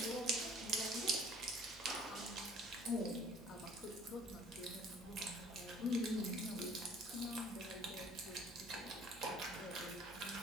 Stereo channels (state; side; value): normal; both; correlation 0.53